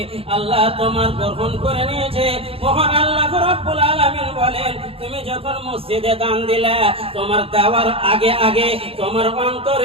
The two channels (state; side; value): late; left; 0.27 ms